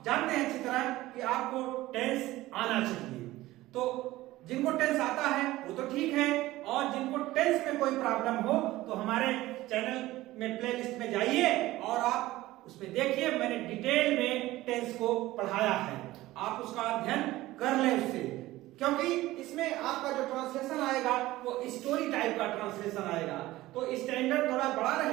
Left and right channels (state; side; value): quieter; left; 17.1 dB